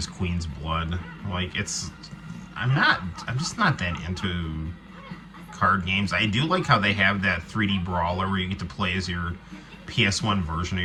Queen's Blood. I'm just not that into card games. I do like how they have that 3D brawler where you get to play as your PS1 version of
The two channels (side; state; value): both; identical; correlation 1.00